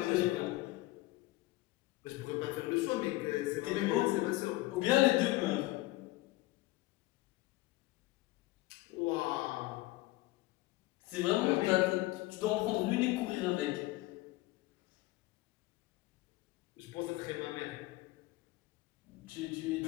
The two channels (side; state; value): right; quieter; 19.0 dB